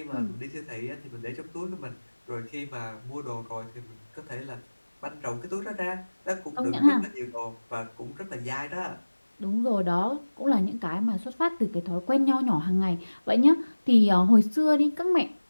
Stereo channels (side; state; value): both; inverted; correlation -1.00